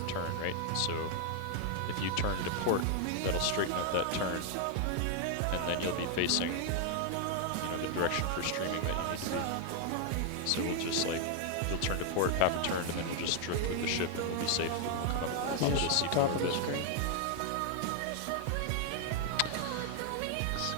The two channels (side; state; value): both; different; correlation 0.00